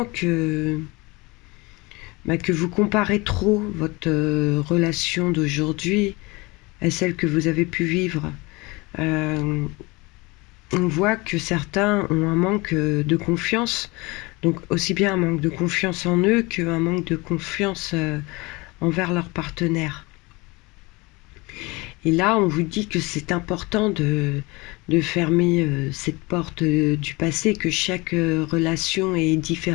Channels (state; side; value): quieter; right; 24.6 dB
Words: que vous comparez trop votre relation d'aujourd'hui à celle que vous avez pu vivre. On voit que certains ont un manque de confiance, donc aussi bien un manque de confiance en eux qu'un manque de confiance envers leur partenaire. Et là, on vous dit que c'est important de fermer cette porte du passé, que chaque relation est